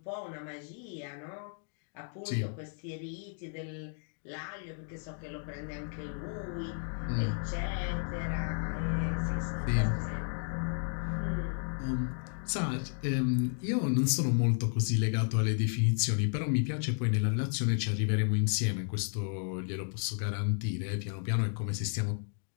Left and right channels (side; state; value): right; silent; 56 dB below the other